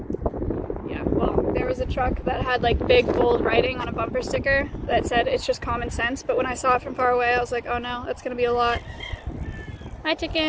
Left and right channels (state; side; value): identical; both; correlation 1.00